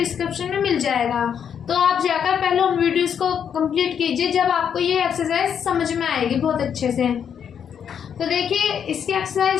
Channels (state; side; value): quieter; right; 8.0 dB